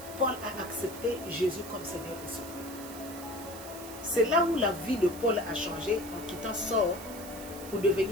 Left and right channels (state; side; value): noise; right; hiss, 14 dB below the sound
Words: Paul a accepté Jésus comme Seigneur et Sauveur. C'est là où la vie de Paul a changé en quittant Saul pour